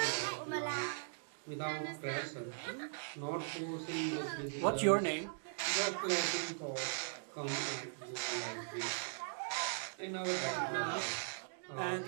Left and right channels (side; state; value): left; silent; digital silence